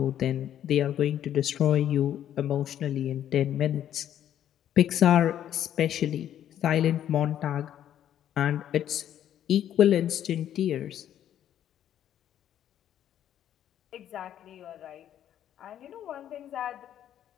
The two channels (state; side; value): quieter; right; 10.7 dB